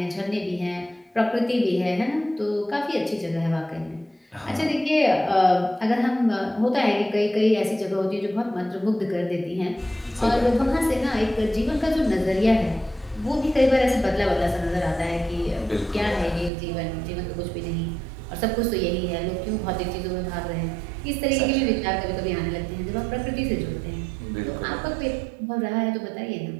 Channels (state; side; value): drops out; left; at 16.5 s